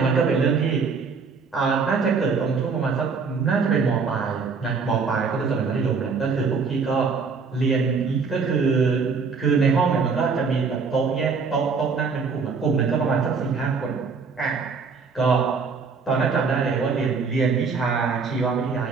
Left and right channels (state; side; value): quieter; left; 5.1 dB